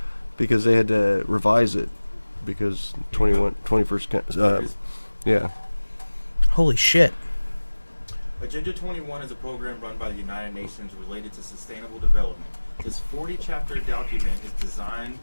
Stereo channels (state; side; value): inverted; both; correlation -1.00